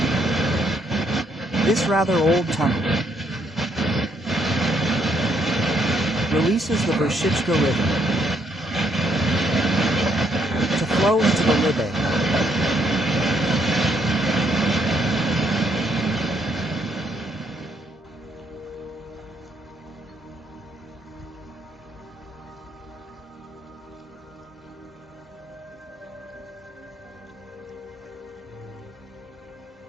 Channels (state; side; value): normal; both; correlation 0.73